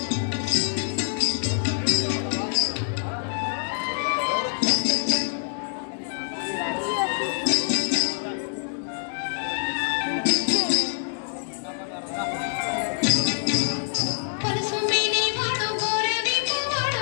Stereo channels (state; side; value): silent; right; digital silence